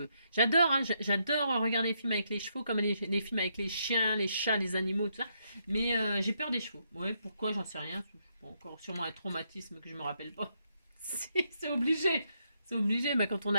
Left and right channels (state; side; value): inverted; both; correlation -0.77